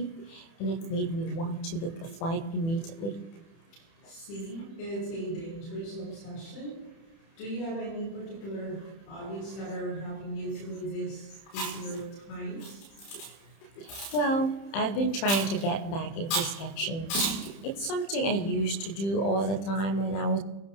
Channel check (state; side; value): late; right; 30 ms